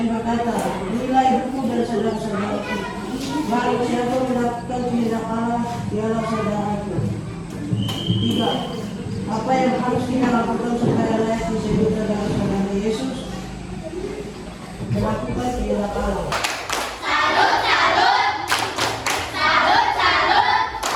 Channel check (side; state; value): both; identical; correlation 1.00